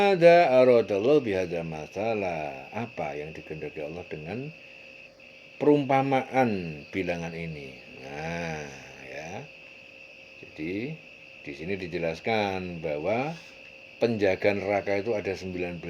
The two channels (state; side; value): identical; both; correlation 1.00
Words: aradallahu bihadza masalah, apa yang dikehendaki Allah dengan perumpamaan bilangan ini. Nah, ya. Jadi di sini dijelaskan bahwa penjaga neraka itu ada 19.